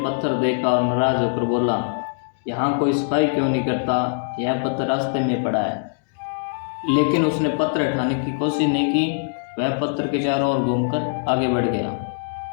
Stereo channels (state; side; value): silent; right; digital silence